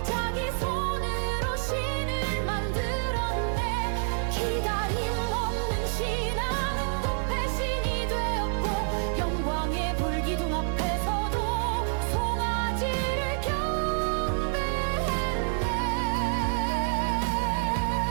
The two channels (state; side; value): silent; left; 59 dB below the other